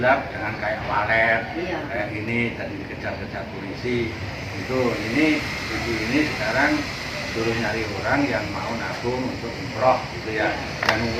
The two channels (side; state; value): both; identical; correlation 1.00